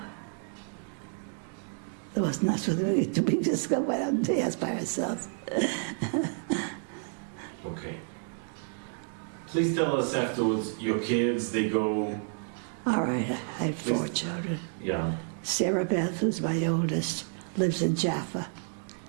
there was nothing to be discovered. Went out and dance by ourselves. Okay. Please tell us afterwards, your kids, they go... All right, I have 4 children. Yeah. Sarah Beth, who's my oldest, lives in Jaffa.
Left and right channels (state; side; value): silent; left; 58 dB below the other